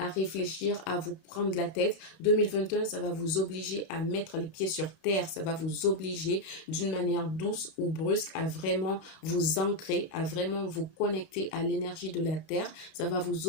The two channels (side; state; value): right; late; 31 ms